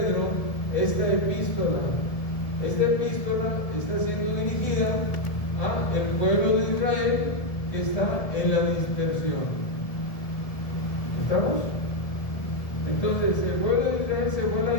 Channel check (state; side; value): late; right; 1.7 ms